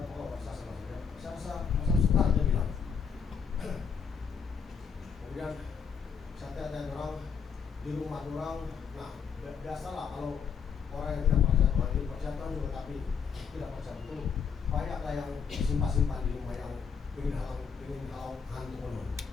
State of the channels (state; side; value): quieter; right; 6.5 dB